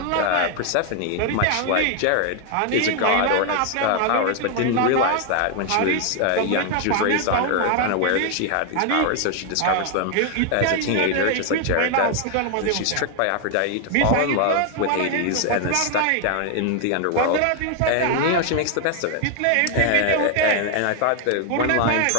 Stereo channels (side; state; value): both; different; correlation 0.00